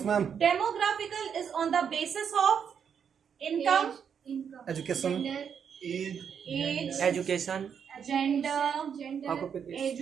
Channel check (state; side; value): quieter; left; 7.5 dB